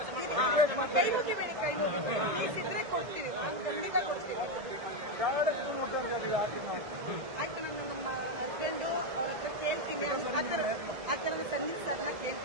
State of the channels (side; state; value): left; late; 1.7 ms